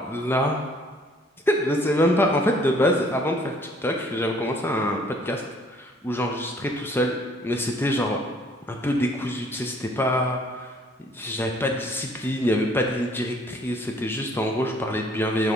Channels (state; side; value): normal; both; correlation 0.59